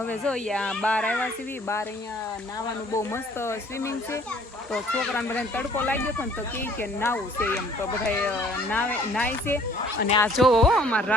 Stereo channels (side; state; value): both; normal; correlation 0.56